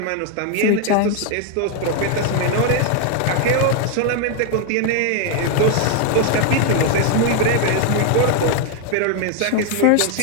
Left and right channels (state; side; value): different; both; correlation 0.01